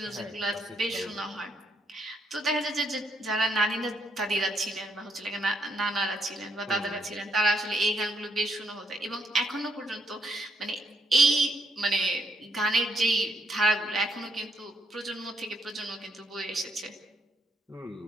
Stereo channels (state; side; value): normal; both; correlation 0.75